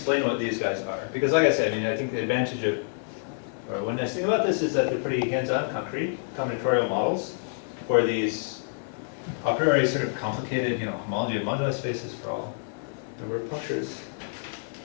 what these guys are, because like I said, I think the advantage of, or one nice thing about this is that they're pretty hands-on, concrete, combinatorial models for these a priori sort of complicated, homology of moduli spaces for all the word punctures.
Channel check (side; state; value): right; silent; 60 dB below the other